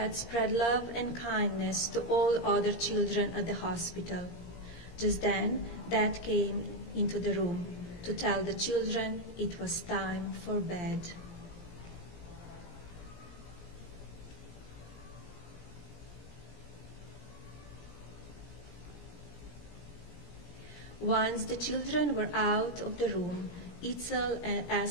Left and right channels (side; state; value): right; late; 17 ms